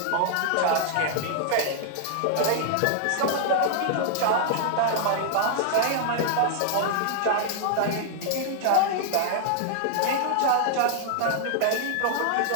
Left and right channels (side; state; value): both; different; correlation -0.01